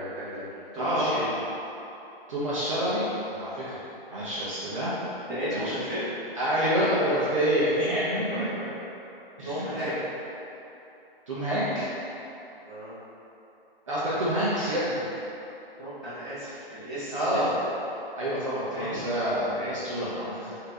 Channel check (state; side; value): normal; both; correlation 0.18